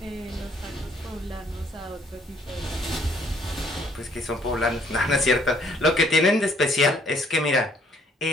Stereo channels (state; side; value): normal; both; correlation 0.64